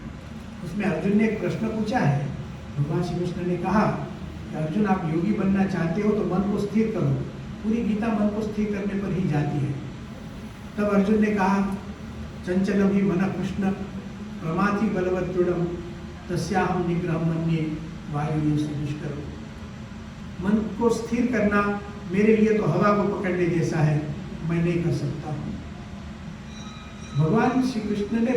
उसमें अर्जुन ने एक प्रश्न पूछा है। भगवान श्री कृष्ण ने कहा कि अर्जुन, आप योगी बनना चाहते हो तो मन को स्थिर करो। पूरी गीता मन को स्थिर करने पर ही जाती है। तब अर्जुन ने कहा, चंचलम ही मन कृष्ण प्रमाथि बलवत् दृढ़म तस्याहं निग्रहं मन्ये वायुर्य दुष्करम। मन को स्थिर करना मेरे लिए तो हवा को पकड़ने जैसा है, मैं नहीं कर सकता हूँ। भगवान श्री कृष्ण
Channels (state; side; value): identical; both; correlation 1.00